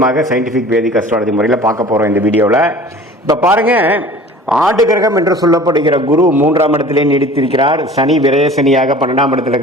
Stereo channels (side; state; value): both; normal; correlation 0.44